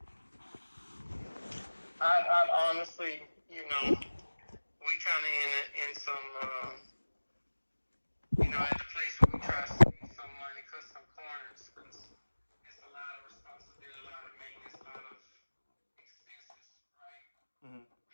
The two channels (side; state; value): both; inverted; correlation -1.00